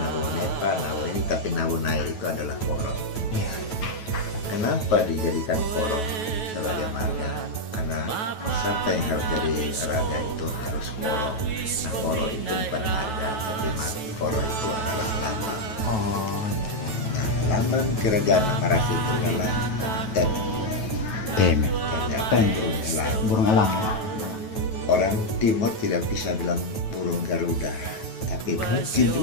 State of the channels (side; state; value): right; late; 9.2 ms